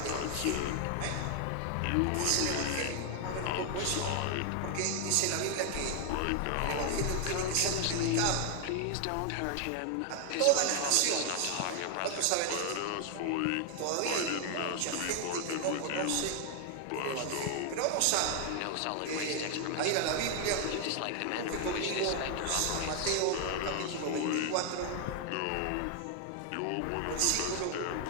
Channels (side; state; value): both; different; correlation 0.00